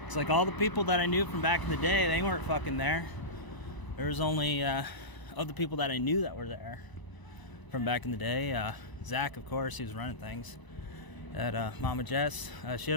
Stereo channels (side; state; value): right; late; 1.0 ms